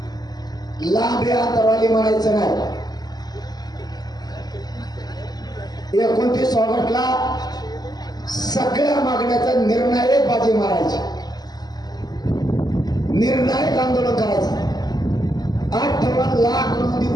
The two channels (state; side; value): late; right; 0.20 ms